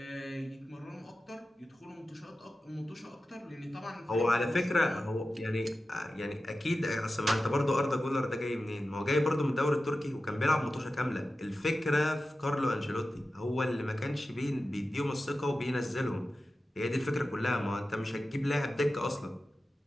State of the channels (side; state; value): both; normal; correlation 0.93